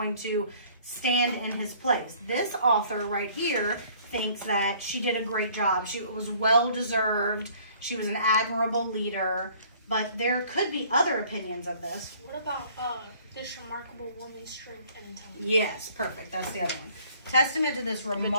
to stand in his place. This author right here thinks that she did a great job. She was well deserved. She was an admirable leader. But there could be other opinions of this. What about this remarkable woman's strength and intelligence? Yes, perfect. That's the other one. Testament to this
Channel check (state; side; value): inverted; both; correlation -0.56